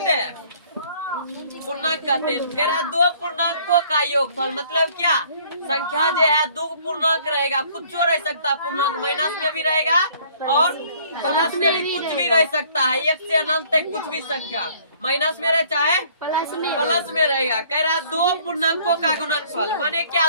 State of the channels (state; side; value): inverted; both; correlation -0.58